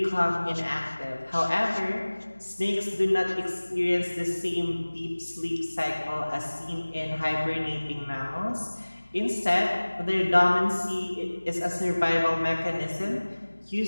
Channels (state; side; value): inverted; both; correlation -1.00